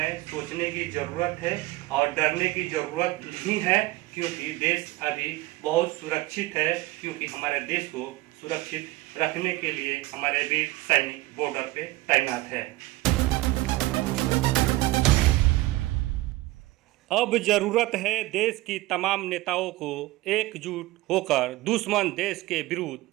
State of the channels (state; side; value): quieter; left; 18.8 dB